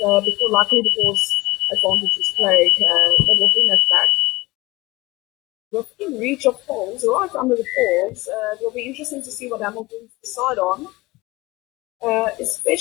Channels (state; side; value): quieter; right; 21.2 dB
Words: before, luckily, because advantage is played, they will bring us back. Within reach of poles, right under the poles, it will be interesting to see what Hamilton decide on,